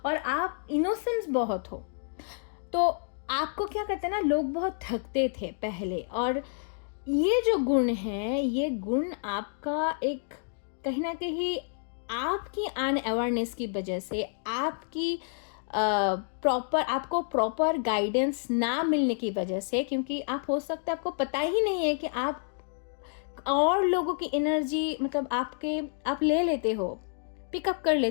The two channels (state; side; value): silent; right; digital silence